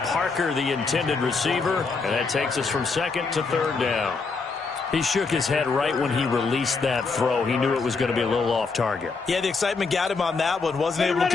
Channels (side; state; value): right; quieter; 4.4 dB